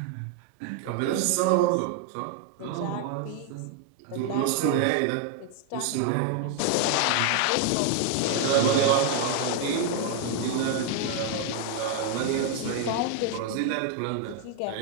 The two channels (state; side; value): different; both; correlation 0.00